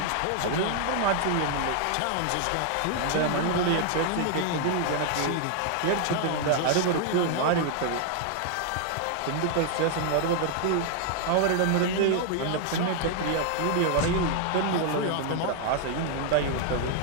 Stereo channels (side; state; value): both; different; correlation 0.00